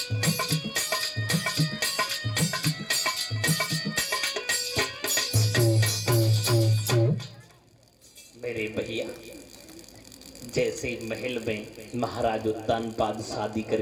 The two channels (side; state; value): both; identical; correlation 1.00